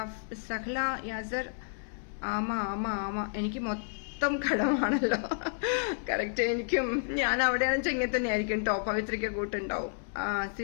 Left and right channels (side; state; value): right; silent; digital silence